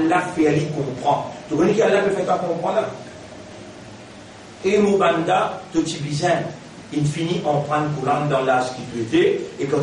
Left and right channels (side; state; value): both; identical; correlation 1.00